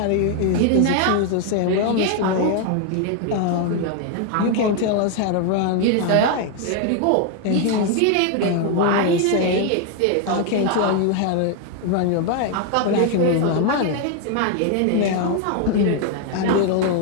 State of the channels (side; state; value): both; different; correlation 0.01